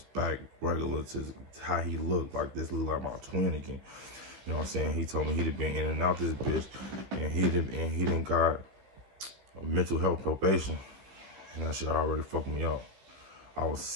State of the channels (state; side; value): late; left; 15 ms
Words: back regular to how he looked. Like this look like my twin again. You know what I'm saying? He told me he'd been in and out this bitch, and he didn't got mental health probation, and that shit already fucked me up. I was